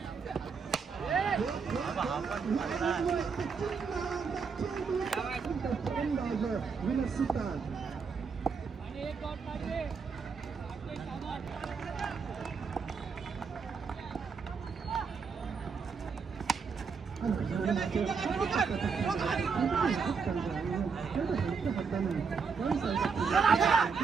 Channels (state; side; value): quieter; left; 5.5 dB